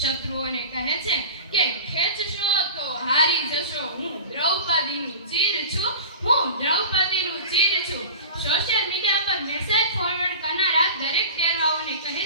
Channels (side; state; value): both; inverted; correlation -0.35